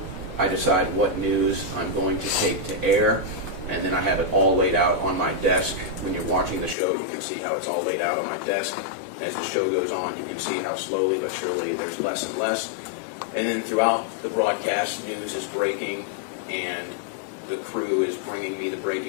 I decide what news I'm going to take to air, and then I have it all laid out on my desk. When you're watching the show, you can see how it's all laid out on my desk. And as the show goes on, you can see how slowly but surely there's less and less. And then throughout the broadcast, news is breaking, and the crew is bringing me the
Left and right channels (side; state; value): right; drops out; at 6.8 s